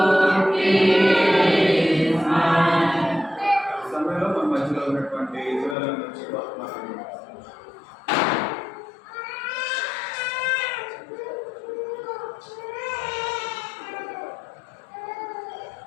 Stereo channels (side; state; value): right; drops out; at 5.8 s